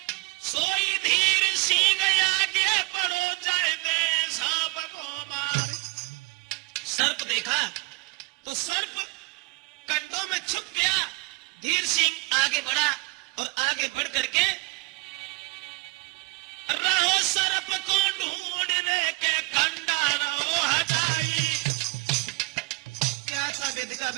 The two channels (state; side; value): quieter; left; 27.2 dB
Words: सोई धीर सिंह आगे बढ़ो जाए दे सांप को मारे। सर्प देखा तो सर्प कंडों में छुप गया। धीर सिंह आगे बढ़ा और आगे बढ़ करके रहो सर्प को ढूंढ रे के कंडा रहो हटाई। क्या था विधि का